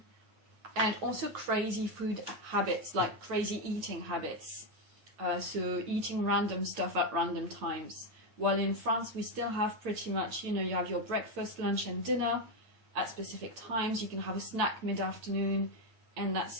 and also crazy food habits, like crazy eating habits. So eating random stuff at random times. While in France, we still have pretty much, you have your breakfast, lunch, and dinner at specific times. You can have a snack mid-afternoon, and that's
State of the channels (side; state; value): left; late; 9.3 ms